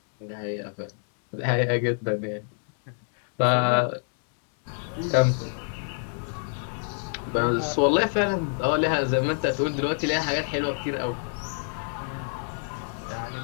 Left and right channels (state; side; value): silent; right; 60 dB below the other